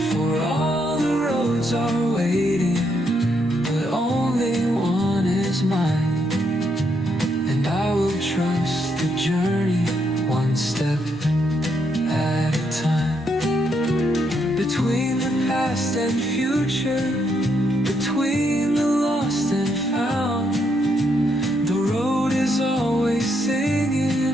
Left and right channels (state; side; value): normal; both; correlation 0.76